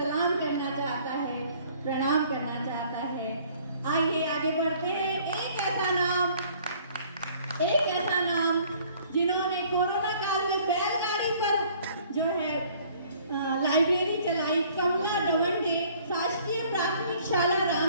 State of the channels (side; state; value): both; inverted; correlation -0.57